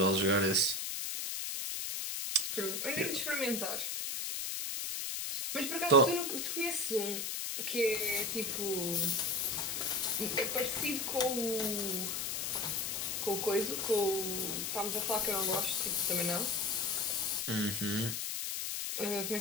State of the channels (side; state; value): left; noise; hiss, 2 dB below the sound